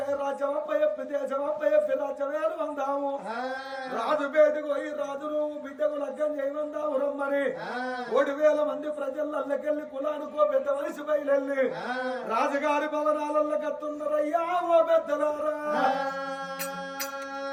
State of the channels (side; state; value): both; identical; correlation 1.00